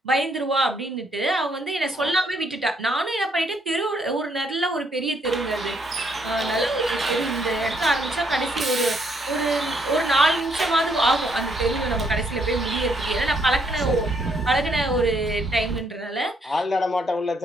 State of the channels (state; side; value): normal; both; correlation 0.71